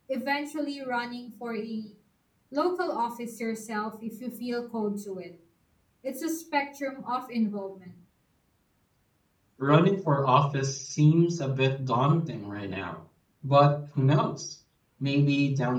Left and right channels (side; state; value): both; identical; correlation 1.00